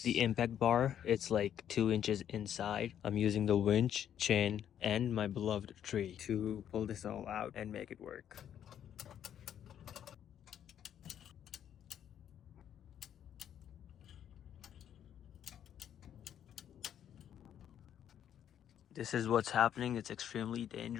the impact bar. It's like 2 inches inside. I'm using the winch, chain, and my beloved tree to pull this all out and make it work. This is what's happening. It's extremely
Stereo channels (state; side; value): quieter; right; 9.8 dB